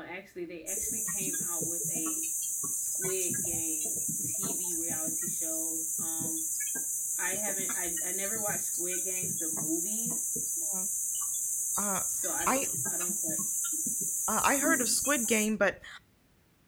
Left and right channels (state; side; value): identical; both; correlation 1.00